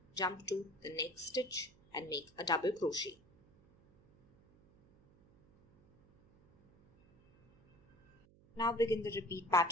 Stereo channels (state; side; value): noise; right; hum, 28 dB below the sound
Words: jump to the next stitch and make a double crochet. Now begin the repeat